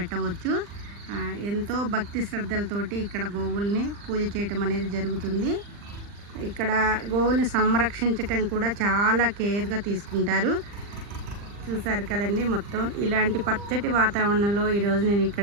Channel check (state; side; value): late; left; 40 ms